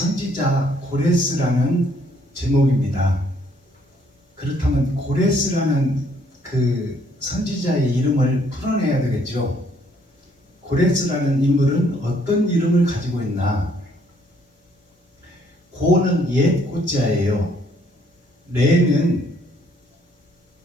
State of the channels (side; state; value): both; normal; correlation 0.66